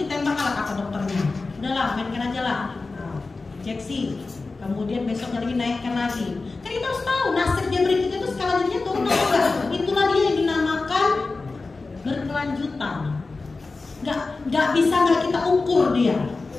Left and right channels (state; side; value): quieter; right; 3.8 dB